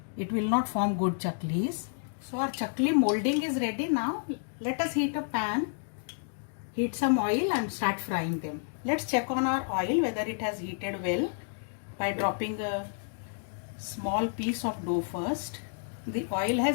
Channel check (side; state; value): right; silent; digital silence